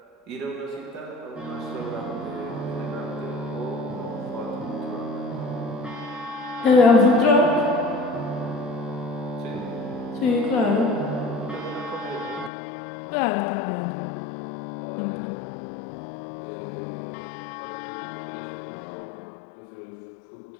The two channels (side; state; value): right; drops out; at 12.5 s